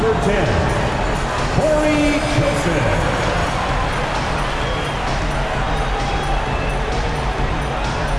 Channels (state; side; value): identical; both; correlation 1.00